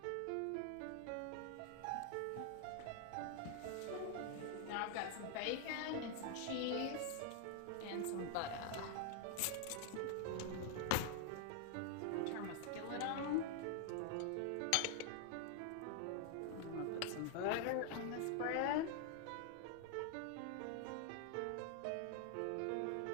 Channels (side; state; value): both; different; correlation 0.00